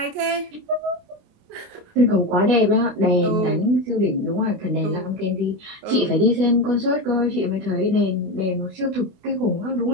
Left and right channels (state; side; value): late; left; 28 ms